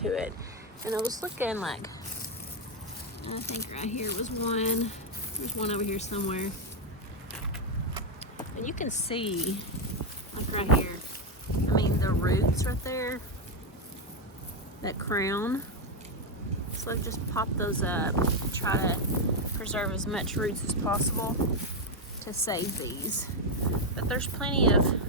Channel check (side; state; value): both; normal; correlation 0.04